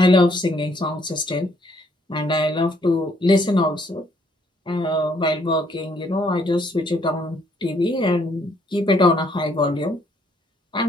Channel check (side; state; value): both; normal; correlation 0.67